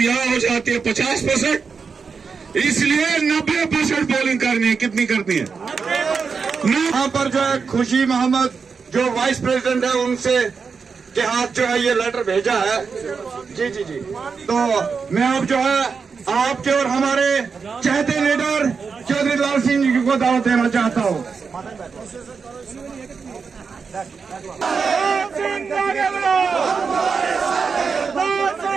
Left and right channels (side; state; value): left; quieter; 5.4 dB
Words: यहां हो जाती है 50%। इसलिए 90% पोलिंग करनी है। कितनी करनी है? यहाँ पर जो है खुशी मोहम्मद जो वाइस प्रेसिडेंट है उनसे के हाथ जो है ये लेटर भेजा है। जी जी जी, तो मैं अब जो है आपके और हमारे चहेते लीडर चौधरी लाल सिंह जी को दावत देना चाहता हूँ।